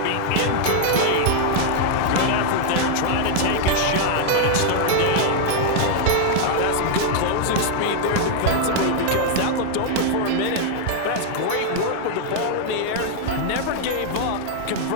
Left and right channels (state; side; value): different; both; correlation 0.00